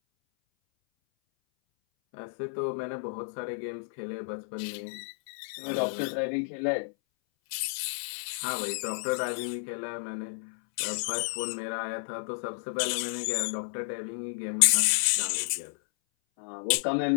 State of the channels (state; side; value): silent; right; 57 dB below the other